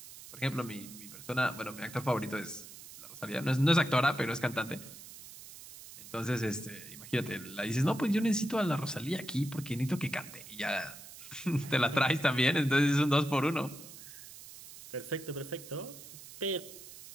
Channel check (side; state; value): right; noise; hiss, 15 dB below the sound